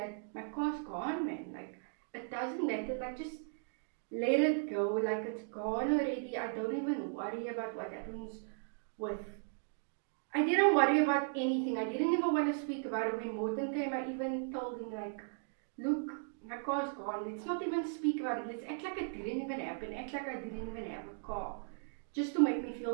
my car's gone, man. Like it doesn't matter, like just let it go, like it's gone already. I don't even worry about what happens with, I didn't worry about anything. I didn't even want to speak about it. When Morton came, I even told him like, look, my car's gone. Let's not even speak about it. Let's act like it didn't even happen. Act like I didn't even have a car. Just to make me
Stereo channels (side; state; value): left; silent; digital silence